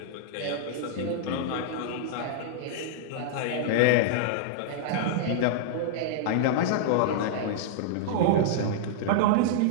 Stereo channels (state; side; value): different; both; correlation -0.01